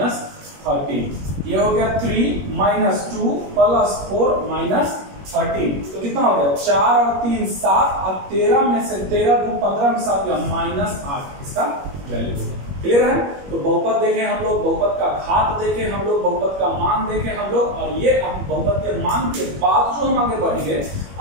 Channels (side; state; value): left; late; 21 ms